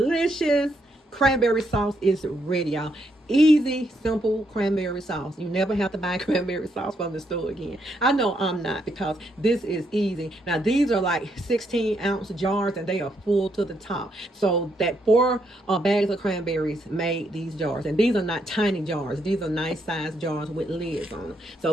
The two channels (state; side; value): normal; both; correlation 0.76